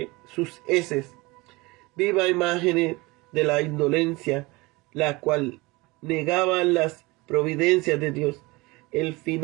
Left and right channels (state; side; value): quieter; left; 23.3 dB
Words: sus heces. Viva imagen de la indolencia, la cual negaba las providencias de Dios. El